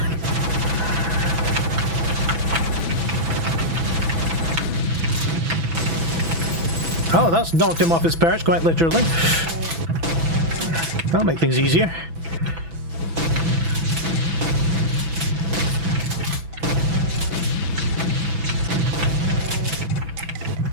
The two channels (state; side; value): late; left; 6.0 ms